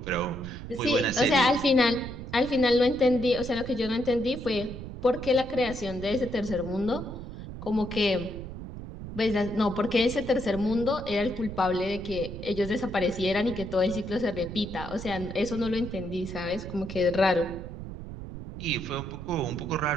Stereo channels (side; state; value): right; noise; rumble, 10 dB below the sound